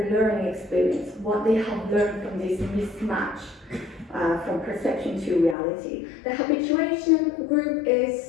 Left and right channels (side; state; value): right; drops out; at 5.6 s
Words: learning experience, what they have learned from this mismatch from perception to reality. The habituation group